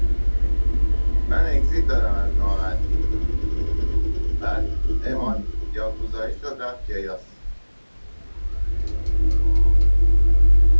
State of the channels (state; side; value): inverted; both; correlation -1.00